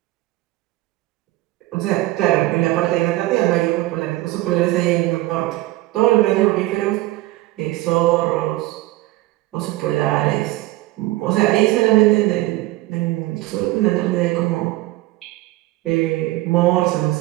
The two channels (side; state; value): left; quieter; 18.2 dB